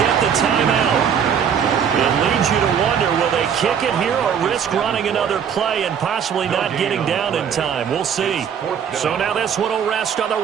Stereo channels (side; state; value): left; quieter; 7.8 dB